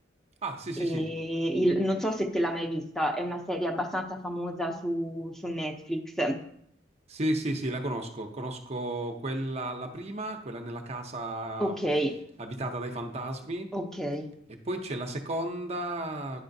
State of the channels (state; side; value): normal; both; correlation 0.72